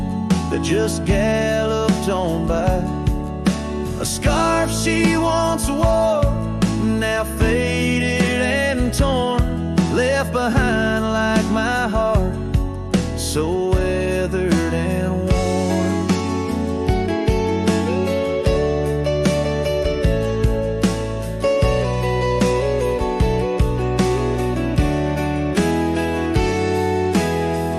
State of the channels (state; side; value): identical; both; correlation 1.00